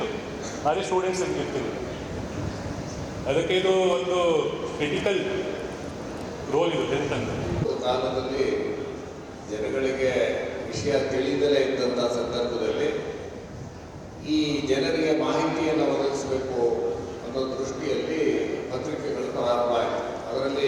ಆದರೆ ಸ್ಟೂಡೆಂಟ್ಸ್ ಇರ್ತಿಲ್ಲ. ಅದಕ್ಕೆ ಇದು ಒಂದು ಕ್ರಿಟಿಕಲ್ ರೋಲ್ ಇದು ಹೆಲ್ತ್ ಅಂತ. ಕಾಲದಲ್ಲಿ ಜನಗಳಿಗೆ ವಿಷಯ ತಿಳಿದಲೇ ಇದ್ದಂಥ ಸಂದರ್ಭದಲ್ಲಿ ಈ ಜನರಿಗೆ ಮಾಹಿತಿಯನ್ನು ಒದಗಿಸಬೇಕು ಅನ್ನೋ ದೃಷ್ಟಿಯಲ್ಲಿ ಪತ್ರಿಕೆಗಳು ಪ್ರಾರಂಭ ಆಯಿತು.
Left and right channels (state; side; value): identical; both; correlation 1.00